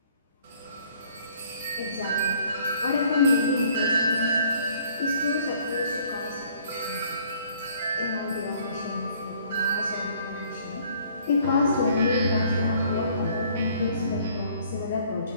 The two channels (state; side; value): inverted; both; correlation -0.59